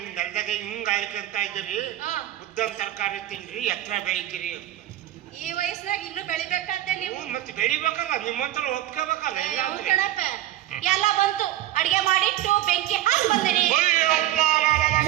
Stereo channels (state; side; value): quieter; left; 13.9 dB